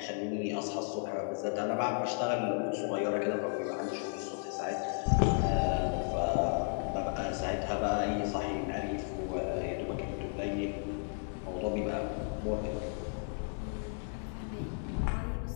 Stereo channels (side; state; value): right; silent; 55 dB below the other